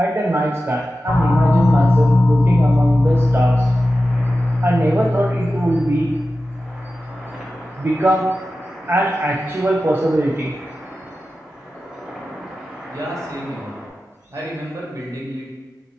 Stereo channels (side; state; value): both; normal; correlation 0.93